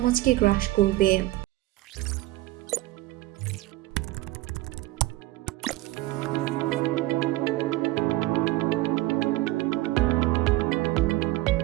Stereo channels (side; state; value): left; quieter; 17.9 dB